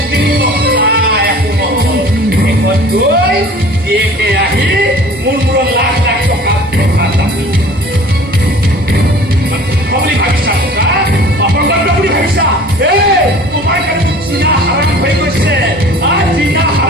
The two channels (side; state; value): both; normal; correlation 0.45